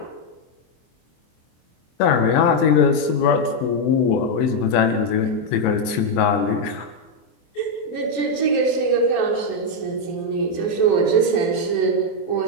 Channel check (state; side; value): late; right; 24 ms